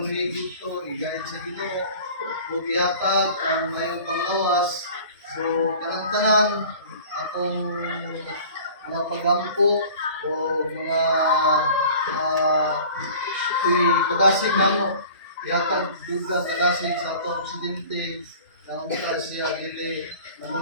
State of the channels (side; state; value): both; inverted; correlation -0.44